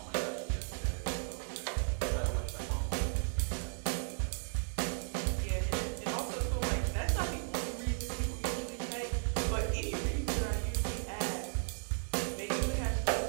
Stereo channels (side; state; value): left; silent; digital silence